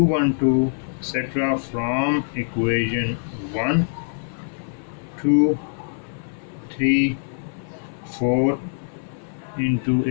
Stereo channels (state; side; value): silent; right; 56 dB below the other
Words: etc., from equation 1, 2, 3, 4 into